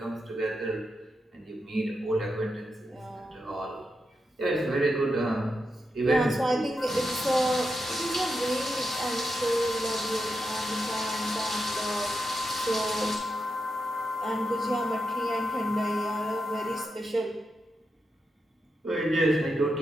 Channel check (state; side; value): normal; both; correlation 0.86